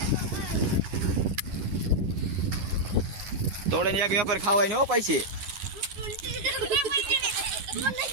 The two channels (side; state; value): left; late; 11 ms